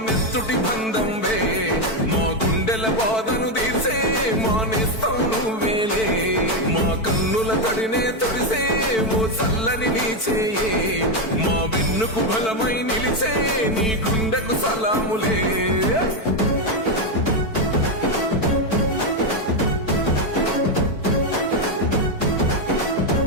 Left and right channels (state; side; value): late; right; 4.5 ms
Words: నెత్తుటి బంధం వే, మా గుండెల బాధను తీసే మా నేస్తం నువ్వేలే, మా కన్నుల తడినే తొడిసే ఓ చల్లని నీ చేయే, మా వెన్నుకు బలమై నిలిచే నీ గుండెకు సలాములే.